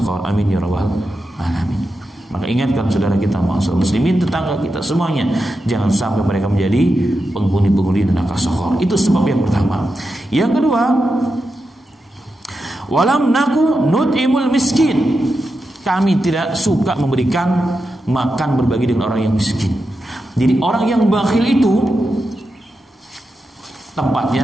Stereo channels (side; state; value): both; normal; correlation 0.89